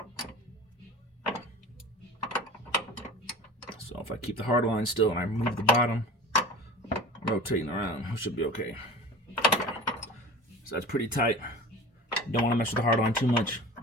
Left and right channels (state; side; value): normal; both; correlation 0.37